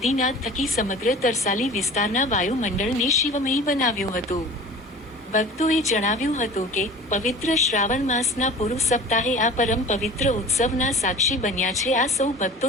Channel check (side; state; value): both; normal; correlation 0.40